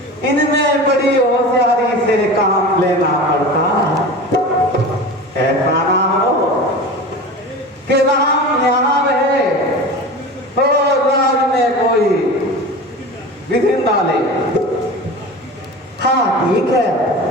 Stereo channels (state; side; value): normal; both; correlation 0.32